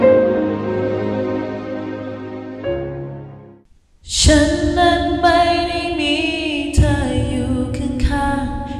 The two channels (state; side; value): identical; both; correlation 1.00